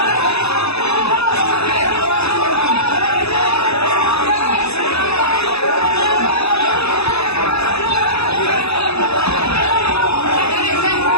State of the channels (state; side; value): late; right; 0.79 ms